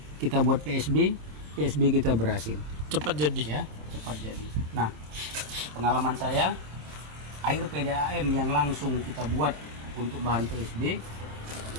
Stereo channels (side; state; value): left; late; 26 ms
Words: Kita buat PSB kita berhasil. Cepat jadi ya, cepat jadi. Nah, pengalaman saya, air PDAM yang langsung kita buat untuk bahan PSB